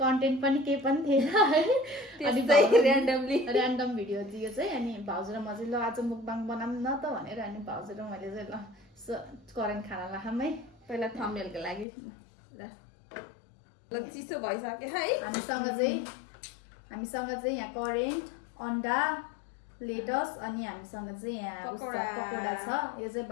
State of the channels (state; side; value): drops out; right; at 11.9 s